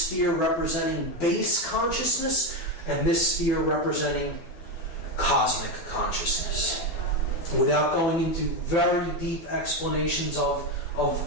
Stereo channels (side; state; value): right; late; 12 ms